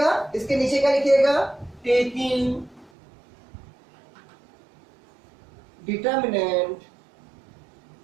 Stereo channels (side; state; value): left; drops out; at 2.9 s